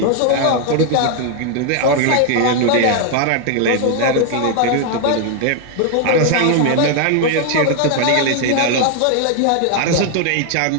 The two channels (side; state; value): both; different; correlation 0.00